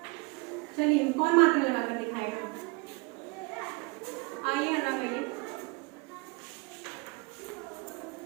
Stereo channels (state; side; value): quieter; left; 28.7 dB